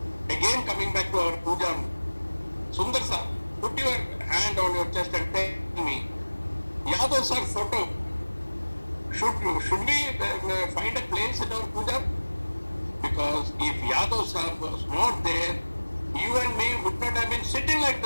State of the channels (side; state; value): both; inverted; correlation -1.00